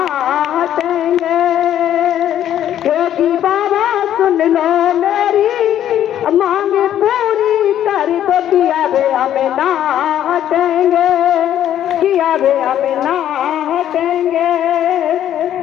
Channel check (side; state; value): right; quieter; 11.1 dB